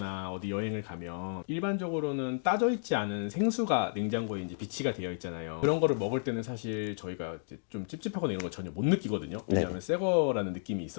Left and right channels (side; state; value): right; silent; digital silence